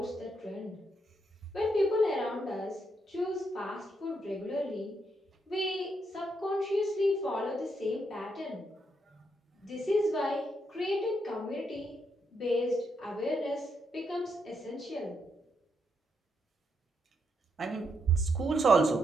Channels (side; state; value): both; normal; correlation 0.79